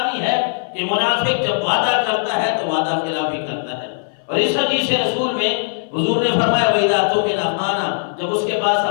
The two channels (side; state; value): right; silent; 60 dB below the other